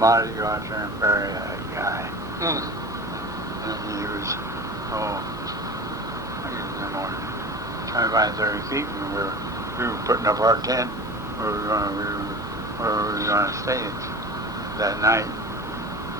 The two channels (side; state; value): left; noise; hum, 19 dB below the sound